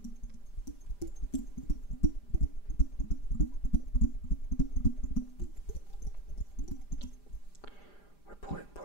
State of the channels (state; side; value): late; right; 5.0 ms